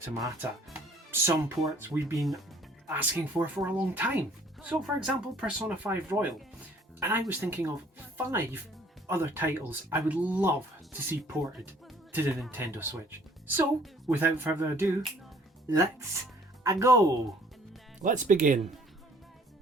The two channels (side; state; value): both; normal; correlation 0.57